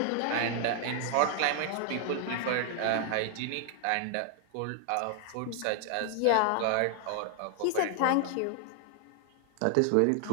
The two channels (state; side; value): different; both; correlation 0.00